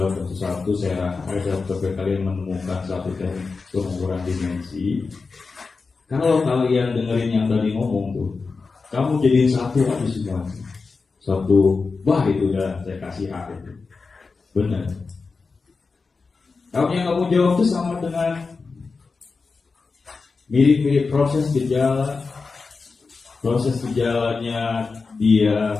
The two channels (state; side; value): quieter; right; 4.4 dB